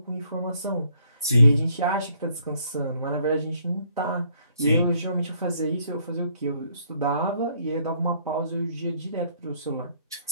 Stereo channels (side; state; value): both; inverted; correlation -0.66